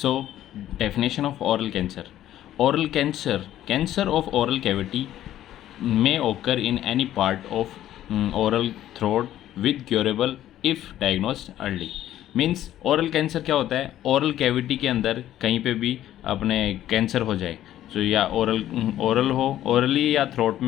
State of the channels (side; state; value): right; quieter; 12.6 dB